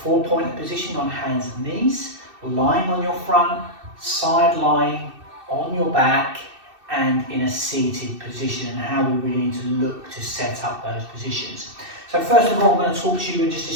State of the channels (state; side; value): late; left; 2.6 ms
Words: position on hands and knees, lying on your front, side lying, on your back, and in a seated position, and how we really need to look to set up those positions. So first of all, I'm going to talk to you and just